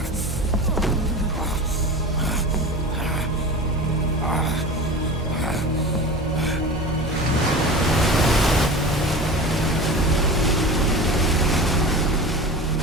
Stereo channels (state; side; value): normal; both; correlation 0.32